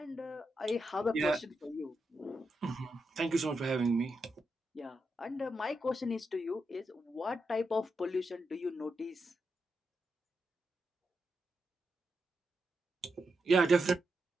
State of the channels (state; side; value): normal; both; correlation 0.85